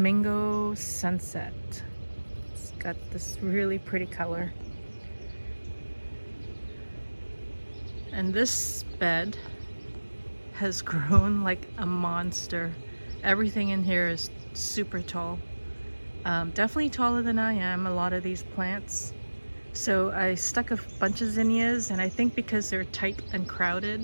Sunset. It's got this really pretty color. And this bed has grown like a monster. Everything in here is super tall. Definitely taller than I am, a lot of these plants. So I stuck a bunch of zinnias, and I think because they're tight and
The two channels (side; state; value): both; inverted; correlation -1.00